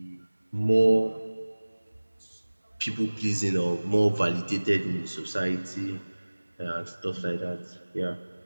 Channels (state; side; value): inverted; both; correlation -1.00